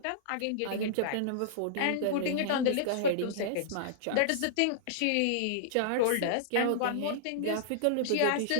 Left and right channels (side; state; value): both; different; correlation -0.02